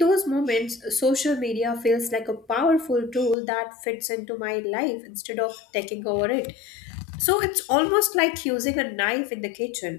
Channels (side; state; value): right; drops out; at 3.4 s